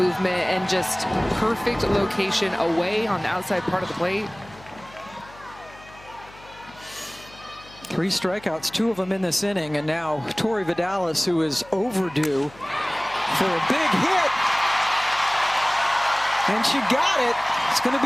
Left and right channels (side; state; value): left; noise; hum, 22 dB below the sound